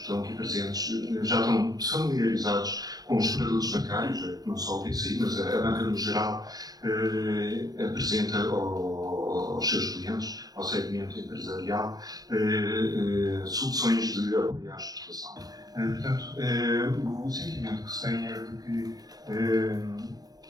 estão aqui presentes, já estão familiarizados com os produtos bancários, não só o BCI, mas a banca no geral apresenta aos seus clientes, ao segmento empresarial, soluções de apoio à exportação. Portanto, o sentimento que se tem é de que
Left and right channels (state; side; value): late; left; 0.18 ms